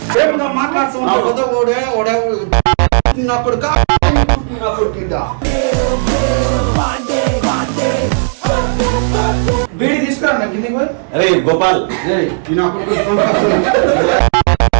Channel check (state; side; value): silent; left; digital silence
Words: బీడి తీసుకురా నాకు కింది. అరే గోపాల్